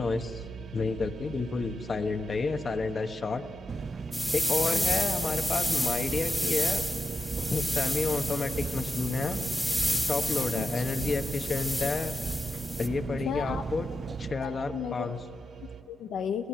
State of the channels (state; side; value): normal; both; correlation 0.89